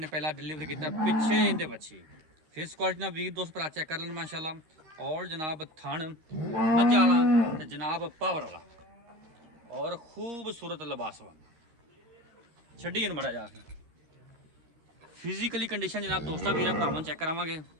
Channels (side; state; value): left; late; 13 ms